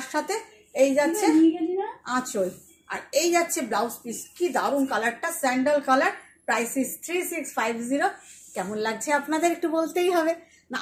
সাথে এই যাচ্ছে আঁচল, আর এই যাচ্ছে ব্লাউজ পিস, কি দারুণ কালারটা, স্যান্ডাল কালার। Price is 3650। কেমন লাগছে আপনাদের একটু বলতেই হবে না,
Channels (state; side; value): identical; both; correlation 1.00